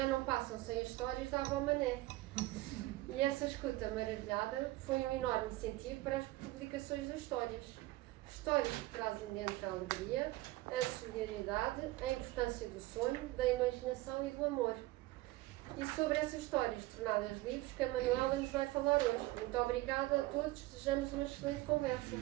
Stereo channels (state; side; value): quieter; left; 18.6 dB